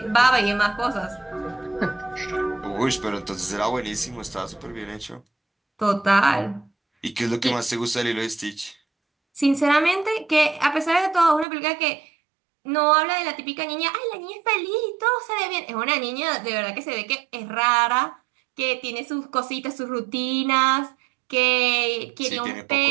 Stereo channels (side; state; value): left; drops out; at 11.5 s